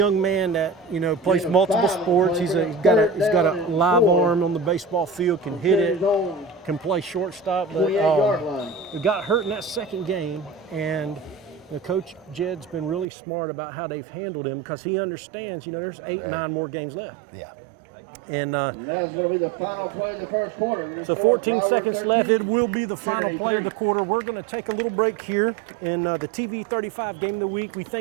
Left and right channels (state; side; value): drops out; left; at 13.1 s